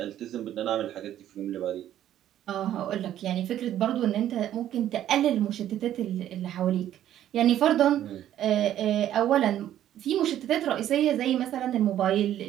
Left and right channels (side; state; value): left; quieter; 11.7 dB